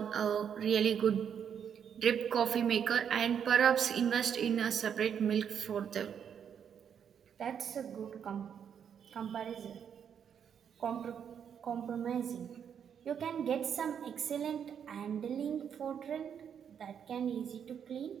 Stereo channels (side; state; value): left; quieter; 8.0 dB